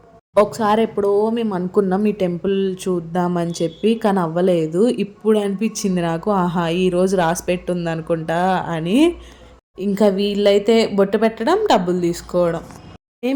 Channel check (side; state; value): both; identical; correlation 1.00